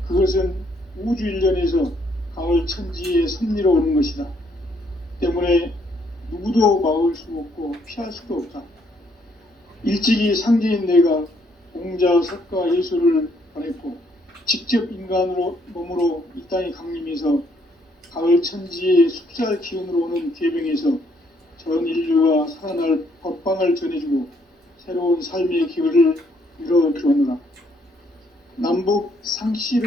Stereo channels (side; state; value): both; normal; correlation 0.69